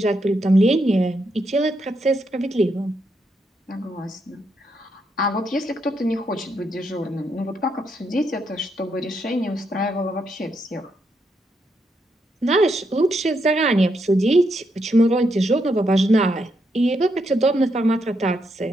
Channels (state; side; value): normal; both; correlation 0.79